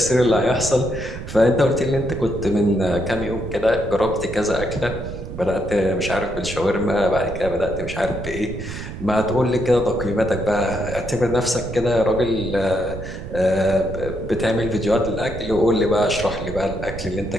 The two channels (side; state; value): right; noise; rumble, 9 dB below the sound